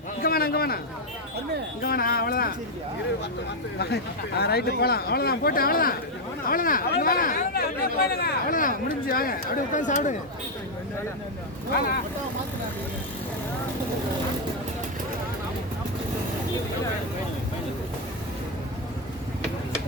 இங்க வேணா, இங்க வேணா, இங்க வேணா. அவ்வளவுதான், ரைட்டு போலாம். அவ்வளவுதான், போட்டு அவ்வளவுதான், அவ்வளவுதான், இங்க வேணா, அவ்வளவுதான், முடிஞ்சு. வாங்க, அப்படியே உட்காந்து சாப்பிடுங்க.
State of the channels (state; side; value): normal; both; correlation 0.03